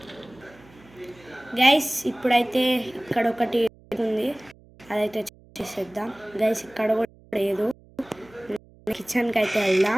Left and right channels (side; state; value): right; noise; hum, 26 dB below the sound